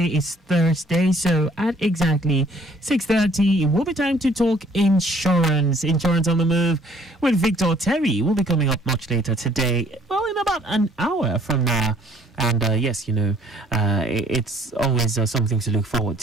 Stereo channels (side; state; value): both; normal; correlation 0.59